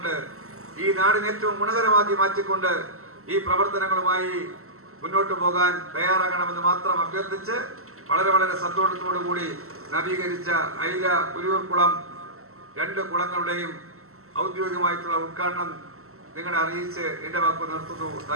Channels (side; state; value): left; late; 0.63 ms